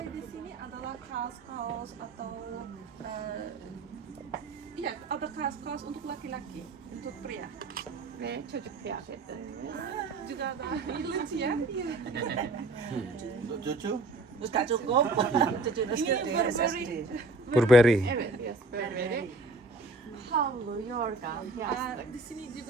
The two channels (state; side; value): quieter; left; 3.1 dB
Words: Di sini adalah kaos-kaos atau ya ada kaos-kaos untuk laki-laki, untuk pria ve çocuk kıyafeti. Juga ada lucu ya. Untuk cucu? Tak cukup. Cucu Ini SSD. Burberry. Evet, yes, Burberry. Havlu, yorgan, yastık. Di sini